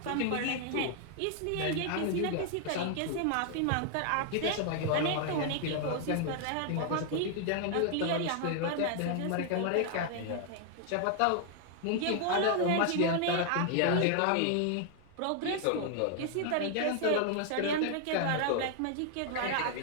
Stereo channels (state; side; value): different; both; correlation 0.00